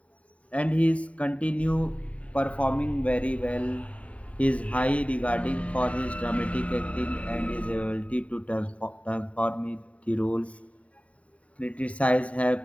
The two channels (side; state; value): right; late; 0.066 ms